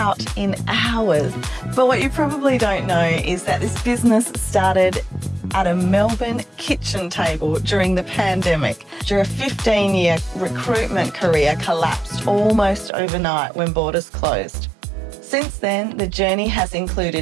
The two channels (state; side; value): drops out; left; at 12.9 s